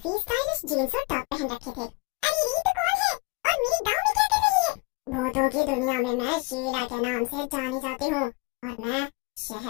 स्टाइलिश जीन्स और टॉप पहन रखे थे। अरे ये तो कौन है और मेरे गांव में क्या कर रही है? भूतों की दुनिया में मैं शीला के नाम से जानी जाती हूँ और मैं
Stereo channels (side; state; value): right; quieter; 26.8 dB